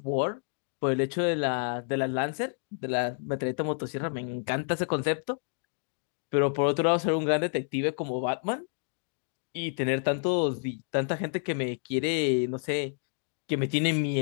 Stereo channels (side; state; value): right; silent; 58 dB below the other